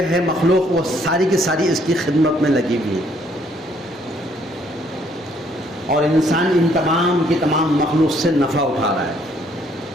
ہیں مخلوق وہ ساری کی ساری اس کی خدمت میں لگی ہوئی ہے، اور انسان ان تمام کی تمام مخلوق سے نفع اٹھا رہا ہے،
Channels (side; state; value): both; normal; correlation 0.66